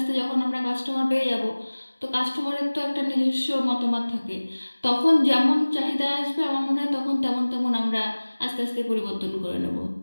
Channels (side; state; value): both; inverted; correlation -1.00